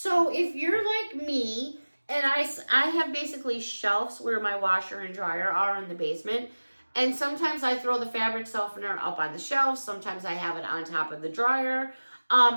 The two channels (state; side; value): inverted; both; correlation -1.00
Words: if you're like me, and I have basically shelves where my washer and dryer are in the basement, and sometimes I throw the fabric softener up on the shelf. Sometimes I have it on top of the dryer.